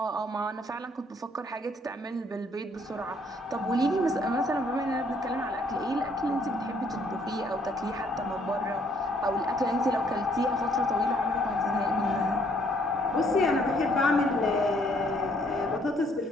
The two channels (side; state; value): both; normal; correlation 0.65